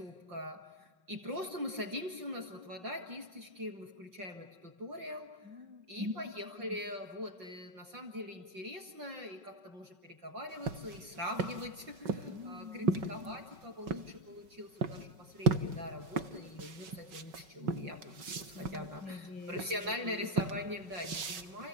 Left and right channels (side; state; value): left; late; 5.3 ms